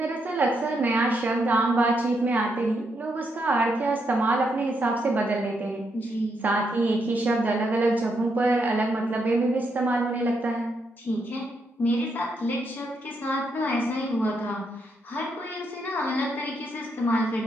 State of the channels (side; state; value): both; normal; correlation 0.79